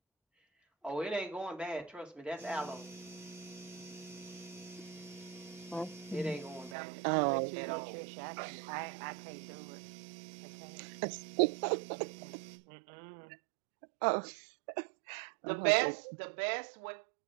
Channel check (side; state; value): left; drops out; at 6.8 s